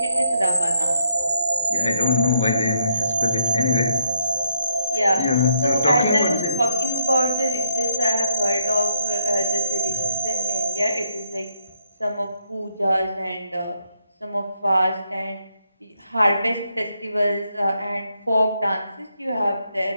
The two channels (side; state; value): both; inverted; correlation -0.75